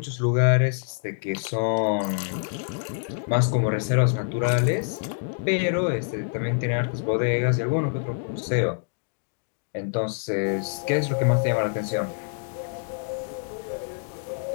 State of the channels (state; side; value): silent; right; digital silence